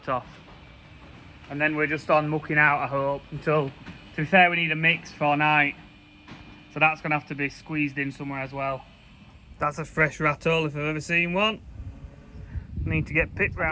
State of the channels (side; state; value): both; identical; correlation 1.00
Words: off, and then we're just on mucking out, I hope, until, to be fair, we need a mix for night, so that's going to have to be squeezed in somewhere as well. That's a fresh rattle if I've ever seen one. Need to get Pip